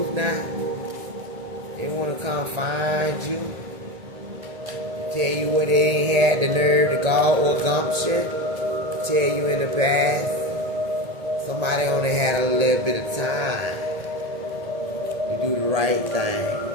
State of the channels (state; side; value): late; left; 1.8 ms